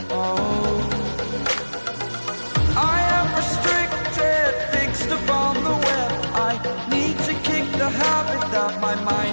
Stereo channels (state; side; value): inverted; both; correlation -1.00